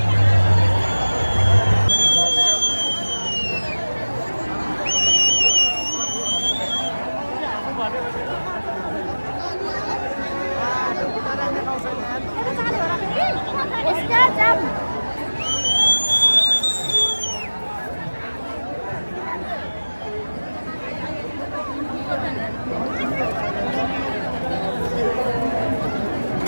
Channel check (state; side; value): inverted; both; correlation -1.00